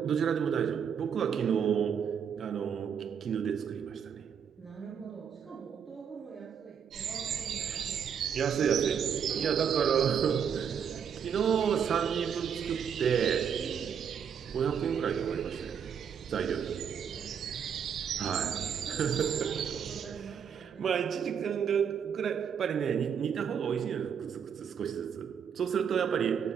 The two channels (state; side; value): quieter; left; 7.6 dB